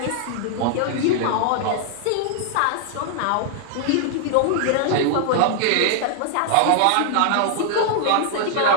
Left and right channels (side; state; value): both; different; correlation 0.00